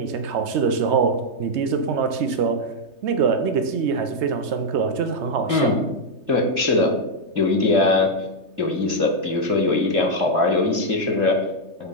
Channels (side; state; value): left; late; 3.2 ms